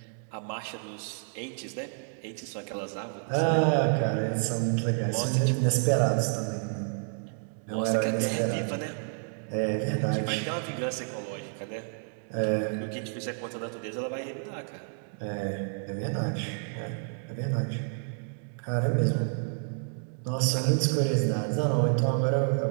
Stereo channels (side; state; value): left; silent; 58 dB below the other